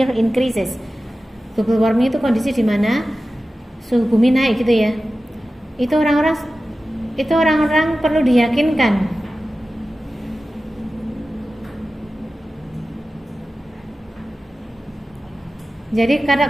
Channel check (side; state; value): both; normal; correlation 0.95